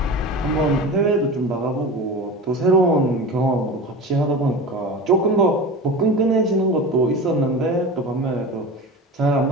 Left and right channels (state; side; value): normal; both; correlation 0.30